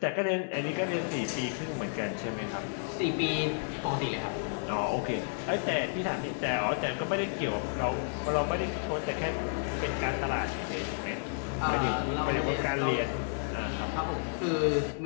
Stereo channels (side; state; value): right; silent; digital silence